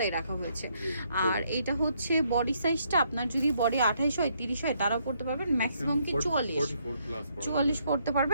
রাখা হয়েছে। আর এটা হচ্ছে বডি সাইজটা, আপনার যদি বডি 28 হয় 30 হয় তারাও পরতে পারবেন, ম্যাক্সিমাম কি 44 পরতে পারবে।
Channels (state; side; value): inverted; both; correlation -0.72